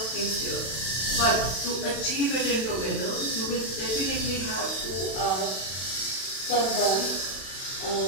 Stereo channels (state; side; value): late; right; 32 ms